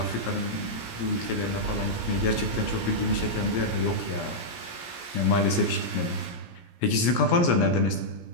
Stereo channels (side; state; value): right; late; 17 ms